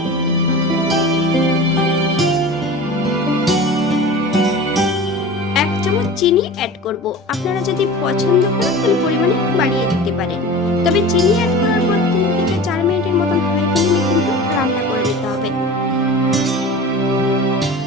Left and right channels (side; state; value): both; normal; correlation 0.36